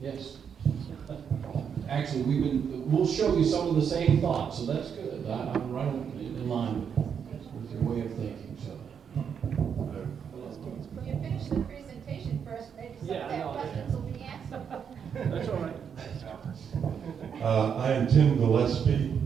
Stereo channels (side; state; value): left; quieter; 7.4 dB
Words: yes. Actually, we'll show you some of the same thoughts, so that's good. I'm right in line with your way of thinking, so. You finish the presentation first, maybe some of their questions will be answered. That's all right. I am Tim Gillespie.